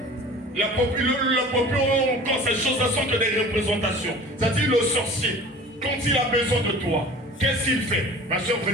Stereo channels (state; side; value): normal; both; correlation 0.42